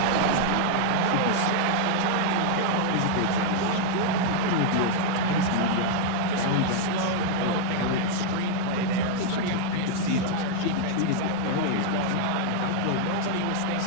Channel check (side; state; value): both; different; correlation 0.00